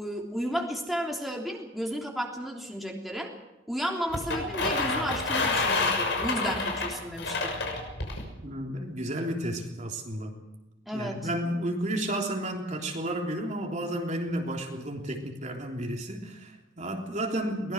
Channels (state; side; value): normal; both; correlation 0.38